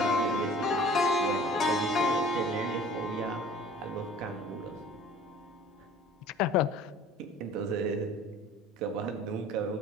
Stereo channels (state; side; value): normal; both; correlation 0.48